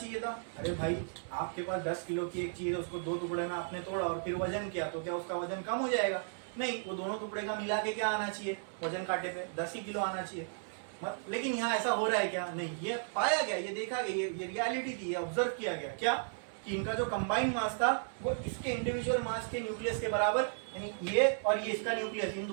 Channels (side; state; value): left; silent; 55 dB below the other